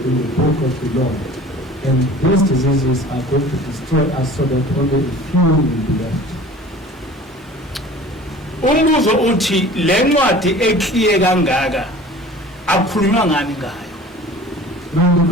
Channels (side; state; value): both; normal; correlation 0.44